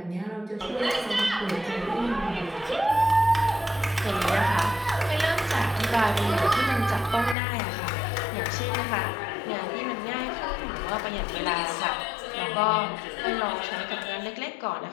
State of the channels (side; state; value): right; drops out; at 7.4 s